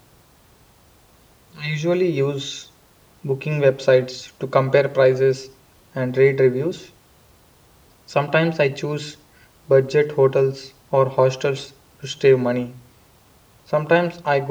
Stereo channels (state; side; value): identical; both; correlation 1.00